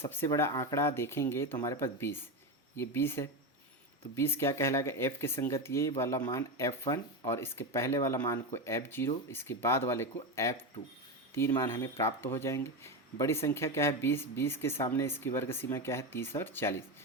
बड़ा आंकड़ा देखेंगे तो हमारे पास 20, ये 20 है। तो 20 क्या कहलाएगा? एफ के संगत ये वाला मान F1 और इसके पहले वाला मान को F0, इसके बाद वाले को F2। 3 मान हमें प्राप्त हो जाएंगे। बड़ी संख्या क्या है? 20। 20 के सामने इसकी वर्ग सीमा क्या है? 30 और 40।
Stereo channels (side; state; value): both; normal; correlation 0.16